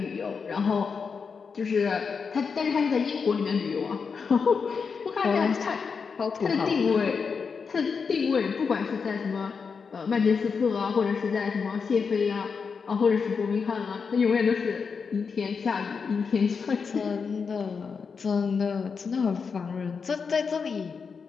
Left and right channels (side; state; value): right; quieter; 5.6 dB